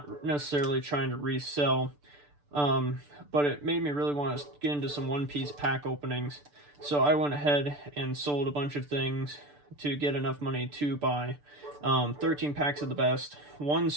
necessarily trying to resell, but it made me really want to get into some One Piece pack openings. So I went ahead and sold a bunch of things to get enough money to buy 13 packs of the best, one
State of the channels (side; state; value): left; late; 6.8 ms